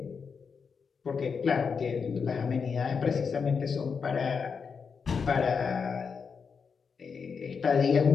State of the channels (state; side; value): quieter; right; 5.8 dB